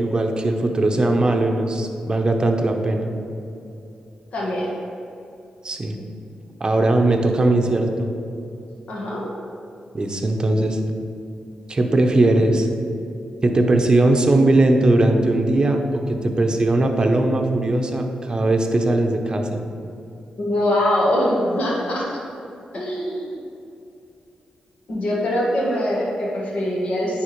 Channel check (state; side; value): normal; both; correlation 0.87